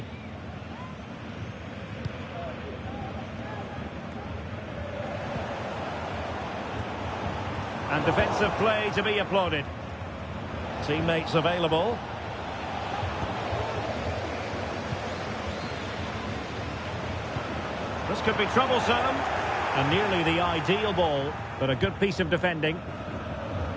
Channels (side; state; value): both; identical; correlation 1.00